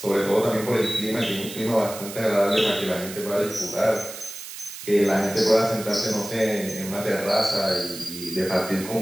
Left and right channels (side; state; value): right; noise; hiss, 11 dB below the sound